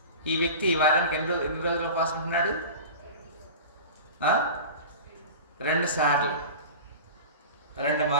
ఈ వ్యక్తి వారానికి ఎన్ని రోజులు ఉపవాసం ఉంటున్నాడు? 2 సార్లు, 2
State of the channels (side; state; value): both; inverted; correlation -0.34